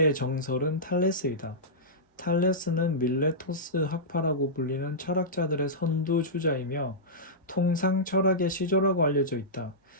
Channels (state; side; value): normal; both; correlation -0.14